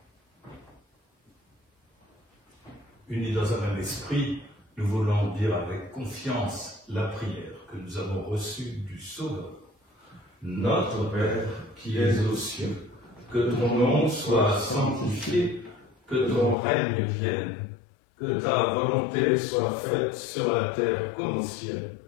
Unis dans un même esprit, nous voulons dire avec confiance la prière que nous avons reçue du Sauveur. Notre Père qui es aux cieux, que ton nom soit sanctifié, que ton règne vienne, que ta volonté soit faite sur la terre comme au ciel.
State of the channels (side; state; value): right; drops out; at 16.6 s